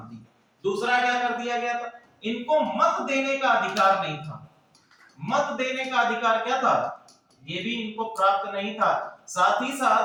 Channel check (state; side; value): identical; both; correlation 1.00